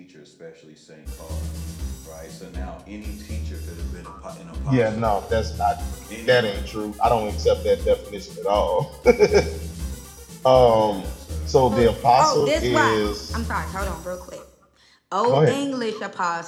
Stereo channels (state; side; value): identical; both; correlation 1.00